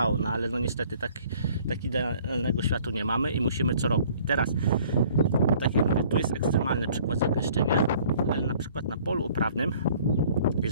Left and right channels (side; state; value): both; inverted; correlation -0.55